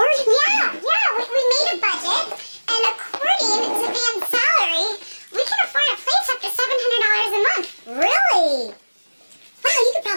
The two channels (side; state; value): both; inverted; correlation -1.00